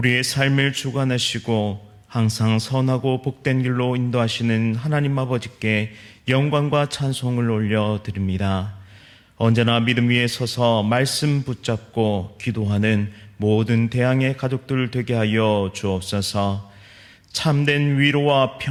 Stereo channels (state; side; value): identical; both; correlation 1.00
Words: 삶을 주관하시고 항상 선하고 복된 길로 인도하시는 하나님 아버지께 영광과 찬송을 올려드립니다. 언제나 믿음 위에 서서 말씀 붙잡고 기도하는 모든 대항의 가족들 되게 하여 주옵소서. 참된 위로와